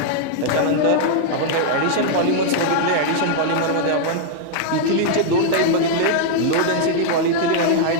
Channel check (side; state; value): both; different; correlation -0.01